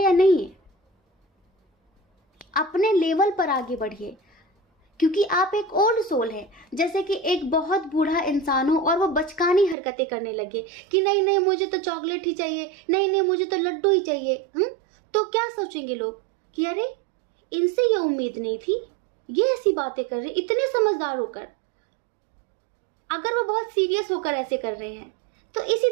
या नहीं है। अपने लेवल पर आगे बढ़िए, क्योंकि आप एक ओल्ड सोल है। जैसे कि एक बहुत बूढ़ा इंसान हो और वो बचकानी हरकतें करने लगे कि नहीं नहीं मुझे तो चॉकलेट ही चाहिए, नहीं नहीं मुझे तो लड्डू ही चाहिए, तो क्या सोचेंगे लोग कि अरे इनसे ये उम्मीद नहीं थी, ये ऐसी बातें कर रहे, इतने समझदार होकर, अगर वो बहुत सीरियस होकर ऐसे कर रहे हैं। तो इसी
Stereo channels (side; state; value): left; drops out; at 9.8 s